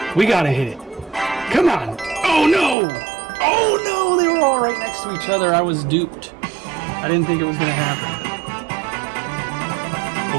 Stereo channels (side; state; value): left; drops out; at 2.8 s